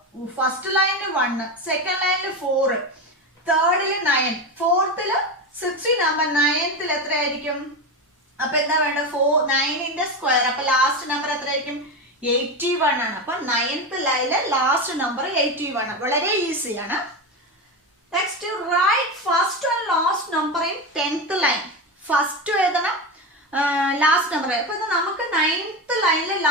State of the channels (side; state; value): both; normal; correlation 0.18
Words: ഫസ്റ്റ് ലൈനിൽ 1, സെക്കൻഡ് ലൈനിൽ 4, തേർഡില് 9, ഫോർത്തില് 16 ആകുമ്പോ 9th എത്രയായിരിക്കും? അപ്പൊ എന്താ വേണ്ട? 9ന്റെ സ്ക്വയർ. അപ്പൊ ലാസ്റ്റ് നമ്പർ എത്രയായിരിക്കും? 81 ആണ്. അപ്പൊ 9th ലൈനിലെ ലാസ്റ്റ് നമ്പർ 81. വളരെ ഈസിയാണ്. Next right first and last number in 10th line. First എഴുതണം, ലാസ്റ്റ് നമ്പർ. അപ്പൊ ഇത് നമുക്ക് 9th ലൈനിലെ